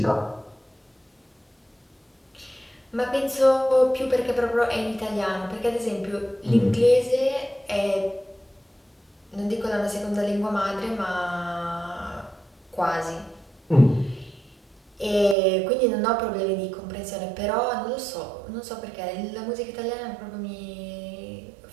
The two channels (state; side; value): drops out; left; at 15.4 s